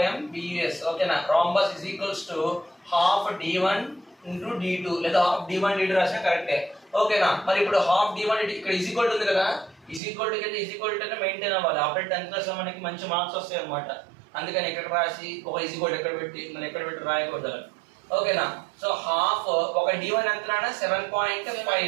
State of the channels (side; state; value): left; drops out; at 10.0 s